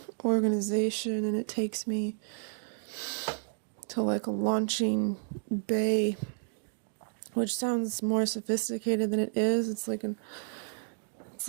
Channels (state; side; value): silent; left; digital silence